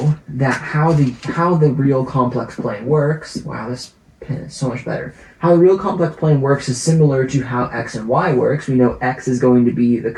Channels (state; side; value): identical; both; correlation 1.00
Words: that how the real complex plane works, wow, this pen is so much better. How the real complex plane works is similar to how x and y works. We know x is going to be the